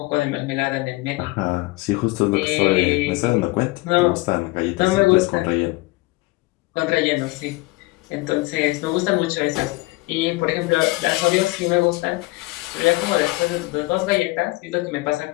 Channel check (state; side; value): quieter; right; 22.3 dB